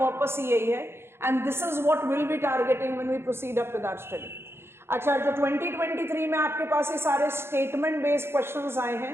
ही यही है, and this is what will be targeting when we proceed up with our study. अच्छा, जो 2023 में आपके पास ये सारे स्टेटमेंट बेस्ड क्वेश्चंस आए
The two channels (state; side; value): late; left; 0.12 ms